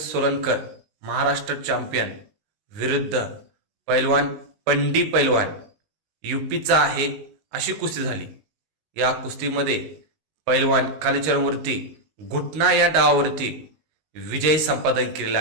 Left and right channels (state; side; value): late; left; 19 ms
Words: महाराष्ट्र चॅम्पियन विरुद्ध पैलवान पंडी पैलवान यूपीचा आहे अशी कुस्ती झाली. या कुस्तीमध्ये पैलवान कालीचरणवरती घुटना या डावावरती विजय संपादन केलेला